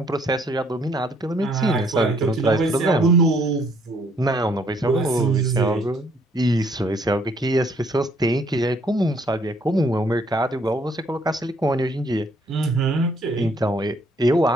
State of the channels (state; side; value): normal; both; correlation 0.65